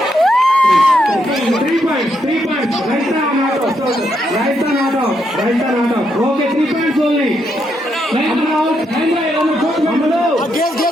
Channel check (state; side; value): normal; both; correlation 0.79